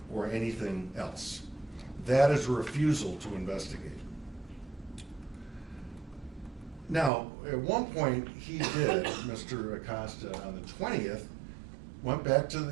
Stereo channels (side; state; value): left; drops out; at 7.1 s